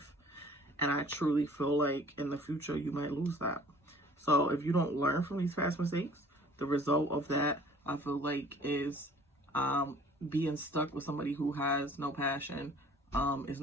And I truly feel like in the future, you might lose that. So if you don't learn from these past mistakes, the result of that, I feel like, is being stuck with somebody who has no passion, is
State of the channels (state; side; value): normal; both; correlation 0.51